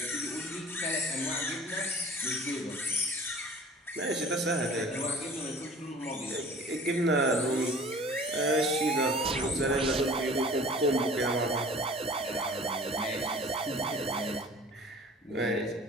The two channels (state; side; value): normal; both; correlation 0.46